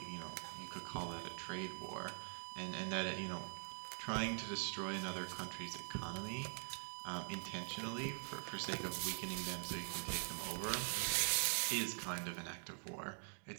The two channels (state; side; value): silent; left; digital silence